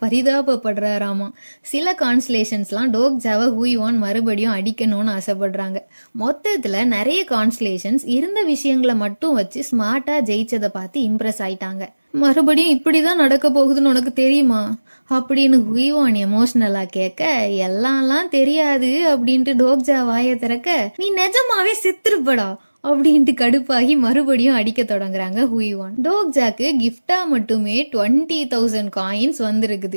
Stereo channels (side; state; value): both; inverted; correlation -1.00